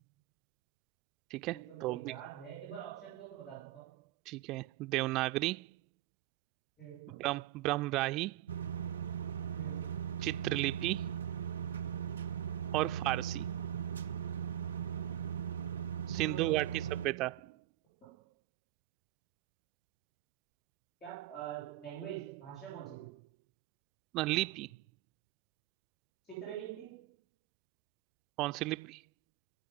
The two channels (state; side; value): quieter; left; 13.4 dB